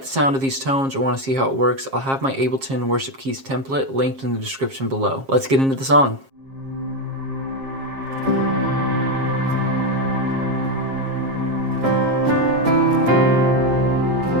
the sound of these tones or want to see how it works, I'll have my Ableton Worship Keys template linked in the description below. Let's get into the song.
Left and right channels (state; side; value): late; left; 7.4 ms